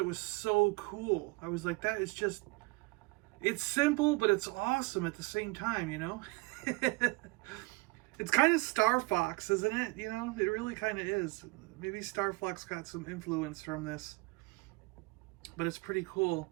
was so cool. I was like, that is just, it's simple, but it's awesome at the same time, you know? It's kind of Star Fox, isn't it? You know, it really kind of is. Maybe Star Fox got some influence from this, but it's pretty cool.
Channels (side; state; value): left; quieter; 25.6 dB